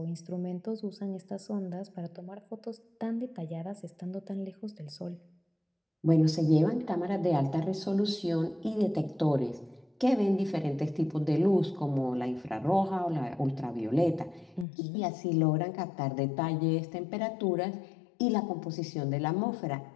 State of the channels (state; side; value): drops out; right; at 14.7 s